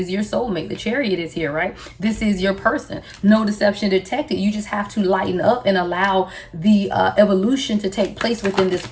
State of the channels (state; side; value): identical; both; correlation 1.00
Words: your soulmate. The Chariot is here, right? This is your person. No deception detected. You just have to lighten up and allow the evolution to take place within this